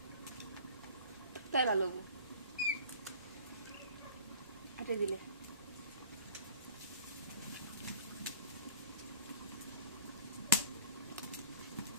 তাই ভালো হাটে দিলে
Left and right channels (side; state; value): both; inverted; correlation -0.43